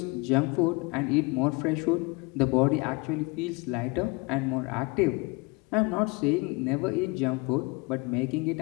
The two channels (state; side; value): quieter; right; 26.9 dB